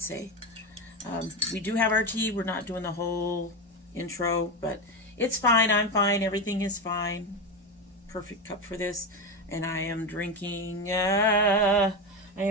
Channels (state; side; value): normal; both; correlation 0.16